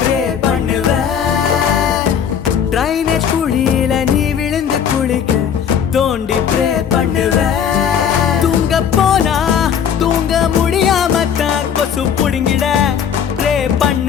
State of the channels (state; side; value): quieter; right; 8.1 dB